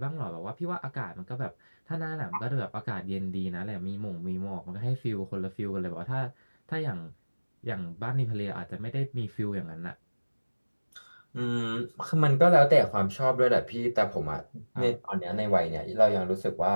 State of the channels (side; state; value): both; inverted; correlation -1.00